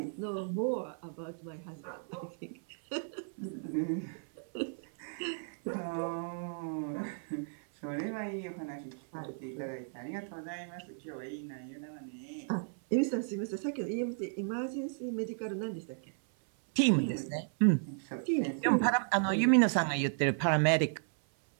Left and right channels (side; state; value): left; silent; 55 dB below the other